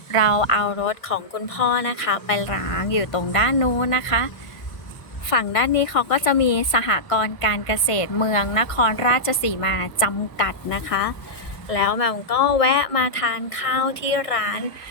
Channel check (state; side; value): late; right; 1.5 ms